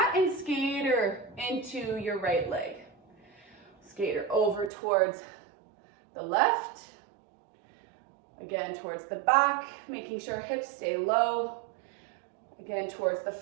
and skater into your right leg. Skater over towards the left. Again, towards the back, making sure hips stay low. Again, towards the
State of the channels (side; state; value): left; drops out; at 4.7 s